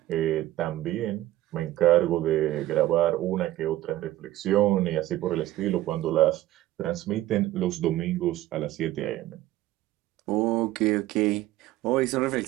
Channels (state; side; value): quieter; left; 15.2 dB